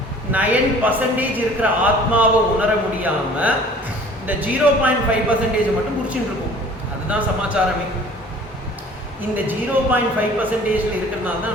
இருக்கிற ஆத்மாவை உணர முடியாமல் இந்த 0.5% மட்டும் முடிச்சுட்டு இருக்கும். அதுதான் சமாச்சாரமே. இந்த 0.5% இருக்கிறதுனால தான்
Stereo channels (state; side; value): normal; both; correlation 0.49